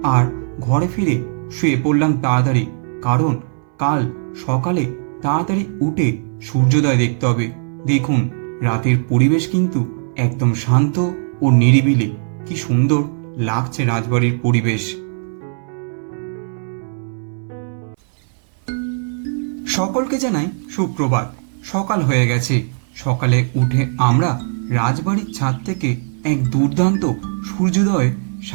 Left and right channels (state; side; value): silent; left; 65 dB below the other